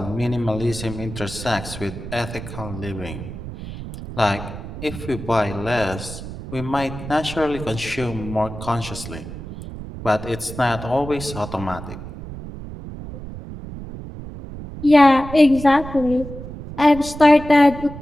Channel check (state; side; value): noise; right; rumble, 11 dB below the sound